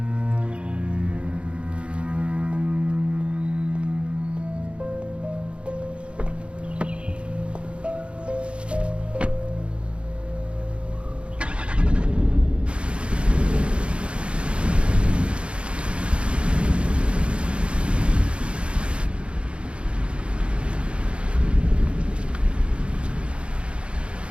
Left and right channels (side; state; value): left; late; 0.058 ms